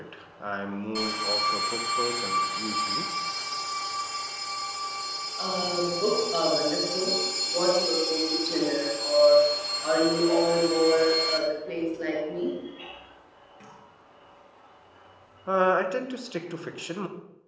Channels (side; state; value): both; identical; correlation 1.00